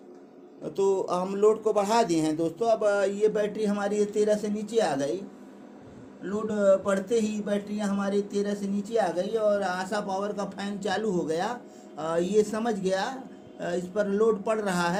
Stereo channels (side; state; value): both; identical; correlation 1.00